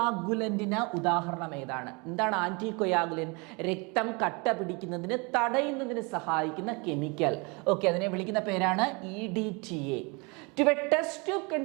ഉദാഹരണം ഏതാണ്? എന്താണ് ആന്റി കൊയാഗുലൻ? രക്തം കട്ട പിടിക്കുന്നതിന് തടയുന്നതിന് സഹായിക്കുന്ന കെമിക്കൽ. ഓക്കെ, അതിനെ വിളിക്കുന്ന പേരാണ് EDTA. To a test tube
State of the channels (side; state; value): left; quieter; 29.3 dB